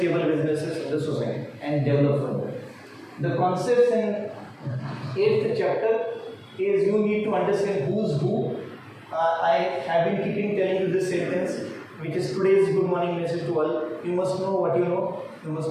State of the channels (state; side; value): identical; both; correlation 1.00